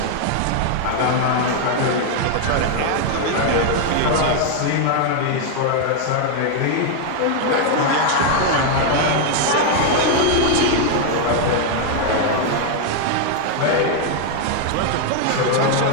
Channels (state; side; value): different; both; correlation 0.00